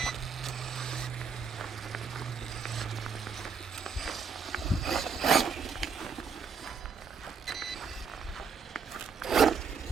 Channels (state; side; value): quieter; left; 5.7 dB